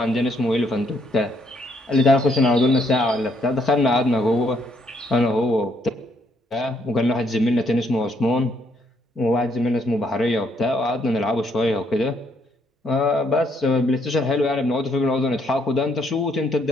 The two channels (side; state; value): both; normal; correlation 0.71